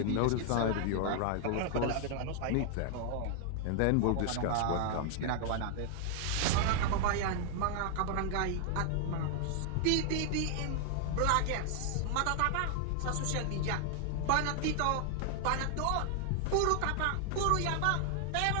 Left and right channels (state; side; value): different; both; correlation 0.00